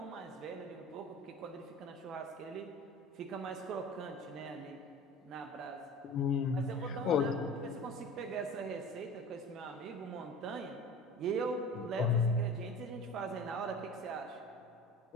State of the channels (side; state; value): both; normal; correlation 0.38